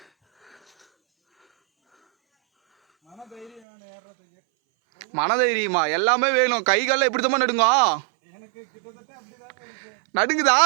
மனதைரியமா எல்லாமே வேணும். கை காலில் எப்படி தான் நடுங்க? நடுங்குதா?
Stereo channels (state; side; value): drops out; left; at 3.6 s